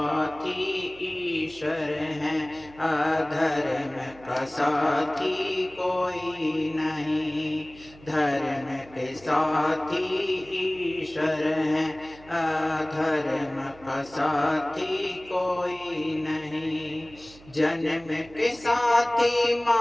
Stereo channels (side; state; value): right; noise; hum, 22 dB below the sound